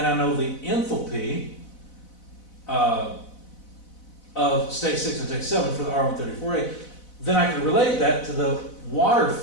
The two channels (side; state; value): right; late; 4.0 ms